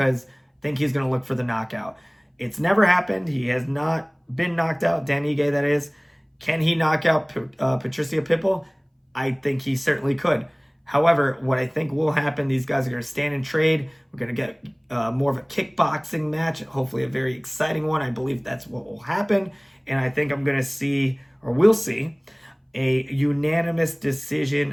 I think he's going to look for the knockout. It's never happened. He has not been knocked out. Dan Ige, that is. Can he knock out Patricio Pitbull? I think he certainly could. However, what I think will happen, these guys are going to stand and trade. We're going to get more of a kickboxing match, hopefully a very exciting one. I believe that's what will happen. And I think I'm going to see, or we'll see, a unanimous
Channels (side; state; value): both; identical; correlation 1.00